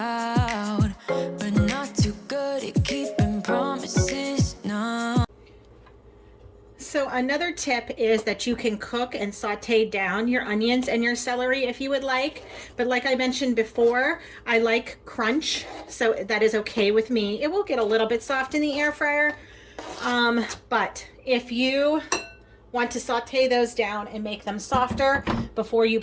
but not too good at keeping promises, no. So another tip is that you can cook and saute down your onions and your celery if you would like. But like I mentioned before, I like crunch, so that is okay with me. It will get a little bit soft in the air fryer, but if you want to saute those down and make them softer before you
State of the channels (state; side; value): identical; both; correlation 1.00